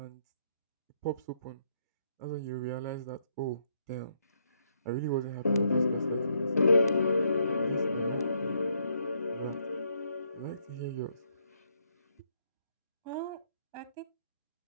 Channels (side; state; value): both; inverted; correlation -0.73